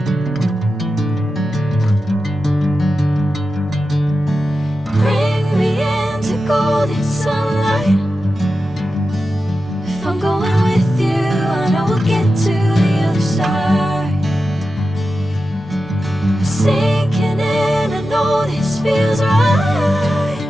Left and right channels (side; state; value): both; normal; correlation 0.91